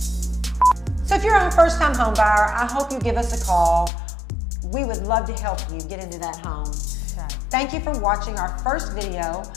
So if you're a first-time home buyer, I hope you give us a call. We would love to help you get into that home. Okay. Thank you for watching our first video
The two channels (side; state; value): right; drops out; at 3.9 s